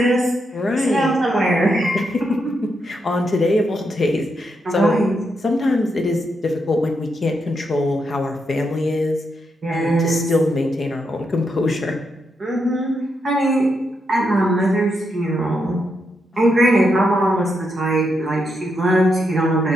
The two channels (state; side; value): normal; both; correlation 0.82